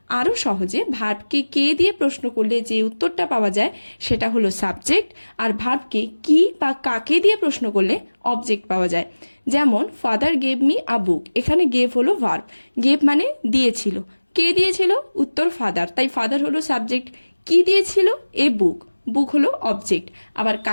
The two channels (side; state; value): both; inverted; correlation -1.00